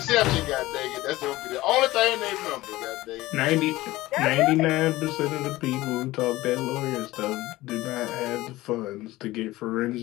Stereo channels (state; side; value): quieter; right; 17.9 dB